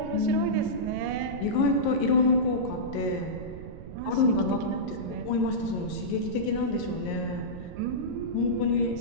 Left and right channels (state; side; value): noise; right; rumble, 12 dB below the sound